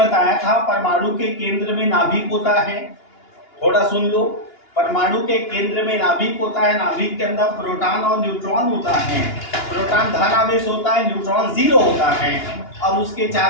था परमाणु के केंद्र में नाभिक होता है। थोड़ा सुन लो। परमाणु के केंद्र में नाभिक होता है, नाभिक के अंदर प्रोटॉन और न्यूट्रॉन होता है। प्रोटॉन धन आवेश होता है, न्यूट्रॉन जीरो होता है और उसके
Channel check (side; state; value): right; late; 2.8 ms